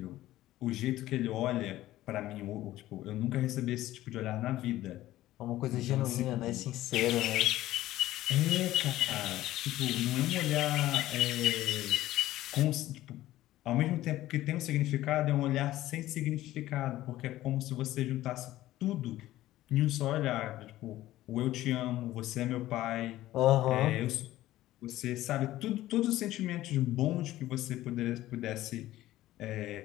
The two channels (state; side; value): quieter; right; 15.2 dB